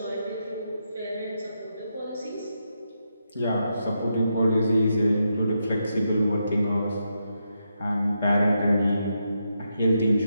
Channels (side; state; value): both; inverted; correlation -0.83